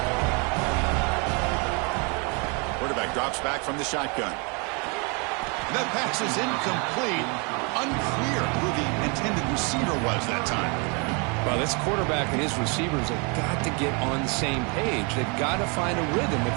Quarterback drops back from the shotgun. That pass is incomplete. Unclear who the intended receiver was that time. Well, this quarterback and his receivers have got to get on the same page. They've got to find a rhythm if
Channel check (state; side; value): quieter; left; 33.0 dB